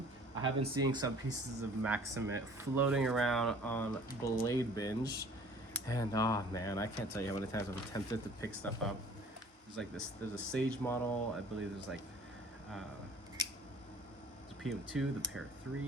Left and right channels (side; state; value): both; normal; correlation 0.51